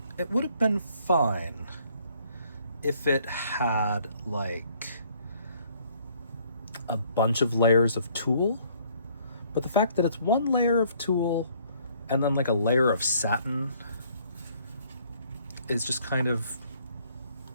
it would have been fine if it had like a bunch of layers of tulle, but the fact that it's one layer of tulle and then like a layer of satin is just kind of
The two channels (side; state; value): both; inverted; correlation -0.63